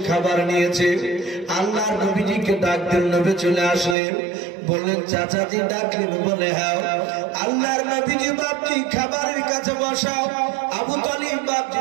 খাবার নিয়েছে। আল্লাহর নবীজিকে ডাক দিল, নবী চলে আসলেন। বললেন চাচাজি ডাকলেন? বলে হ্যাঁ। আল্লাহর নবীজি বাপটি খাবারের কাছে বসাও, আবু তালিব বাপটি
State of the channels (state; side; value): drops out; left; at 4.0 s